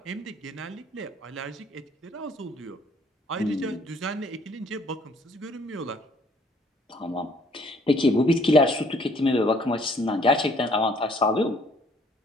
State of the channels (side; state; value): both; normal; correlation 0.60